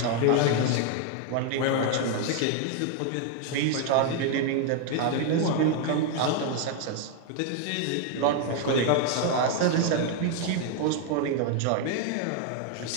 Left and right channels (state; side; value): different; both; correlation 0.00